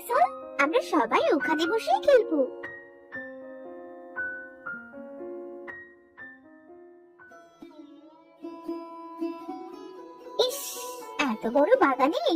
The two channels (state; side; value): identical; both; correlation 1.00